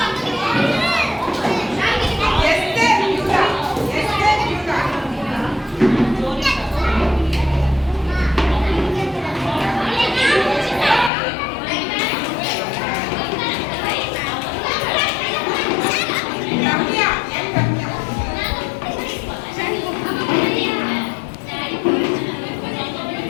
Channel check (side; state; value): right; drops out; at 11.1 s